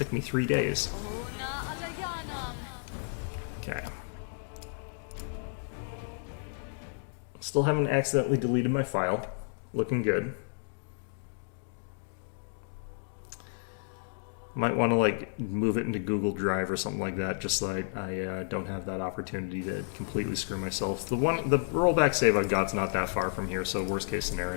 me 3 days. Okay. Still haven't accidentally deleted my file. Looking good. Might want to like move it into Google Drive or something like that, just so I don't have that opportunity to completely screw myself. The rollback save I've got's not that far from here, so worst case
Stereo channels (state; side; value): silent; right; digital silence